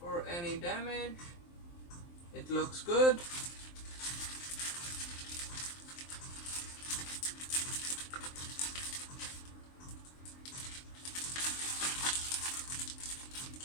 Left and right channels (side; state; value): right; late; 23 ms